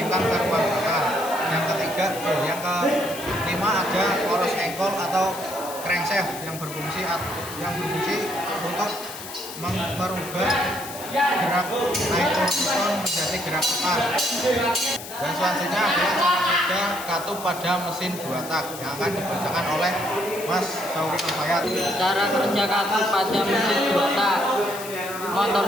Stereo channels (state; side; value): noise; left; hiss, 12 dB below the sound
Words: ke ruang bakar. Yang kelima ada poros engkol atau crankshaft yang berfungsi untuk merubah gerak naik piston menjadi gerak tekan. Dan selanjutnya adalah cara kerja katup pada mesin 2 tak yang akan dibacakan oleh Mas Syauki Alfayat. Cara kerja katup pada mesin 2 tak. Motor